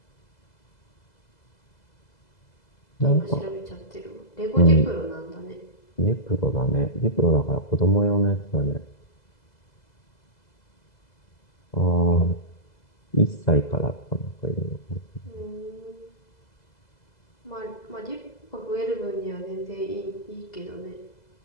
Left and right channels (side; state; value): right; late; 2.0 ms